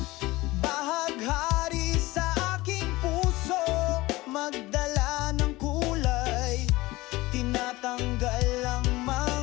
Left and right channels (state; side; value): quieter; right; 19.9 dB